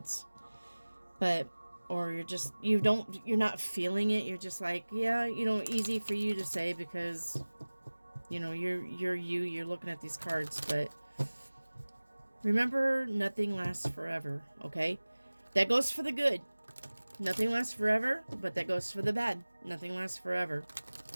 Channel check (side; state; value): both; inverted; correlation -1.00